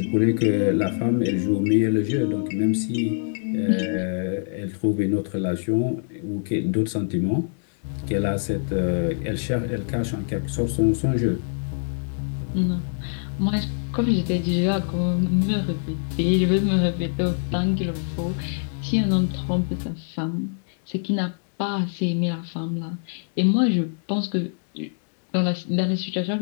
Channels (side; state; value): right; silent; 62 dB below the other